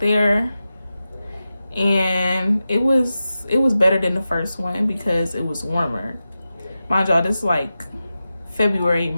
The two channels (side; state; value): both; inverted; correlation -0.93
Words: there, and it was better than the first one because it was warmer. Mind y'all, this is like February,